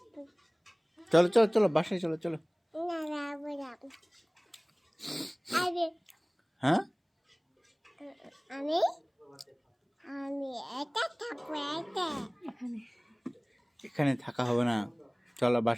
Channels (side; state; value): both; identical; correlation 1.00